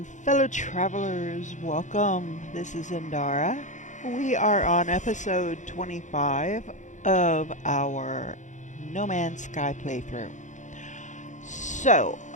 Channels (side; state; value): right; late; 0.36 ms